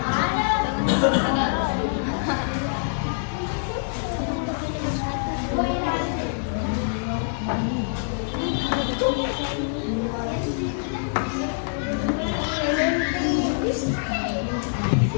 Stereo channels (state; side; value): silent; right; 62 dB below the other